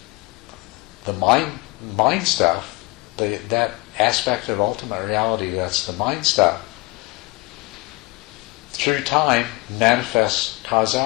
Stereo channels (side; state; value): right; quieter; 23.9 dB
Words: the mind stuff, that aspect of ultimate reality that's the mind stuff, through time manifests